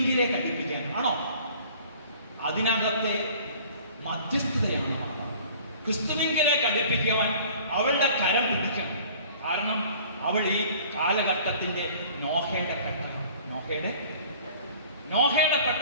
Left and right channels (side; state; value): both; inverted; correlation -0.49